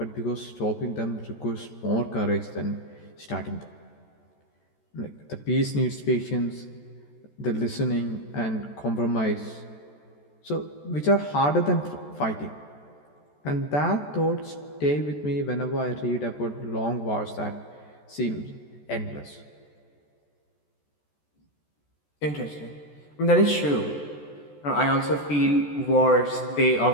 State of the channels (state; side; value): late; right; 14 ms